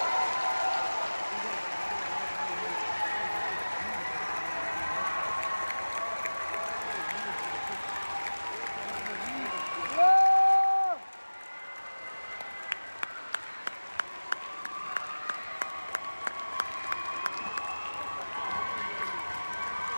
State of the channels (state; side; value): inverted; both; correlation -1.00